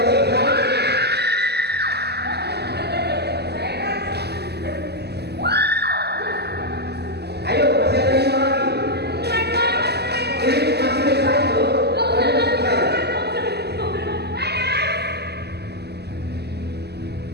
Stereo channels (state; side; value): late; left; 0.48 ms